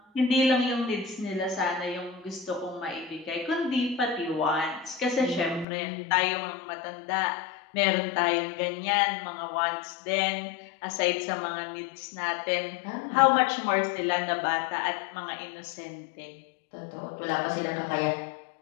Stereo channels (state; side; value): drops out; right; at 5.7 s